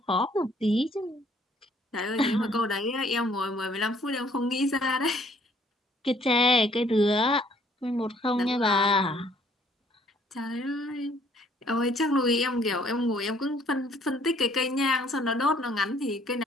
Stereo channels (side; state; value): both; normal; correlation 0.62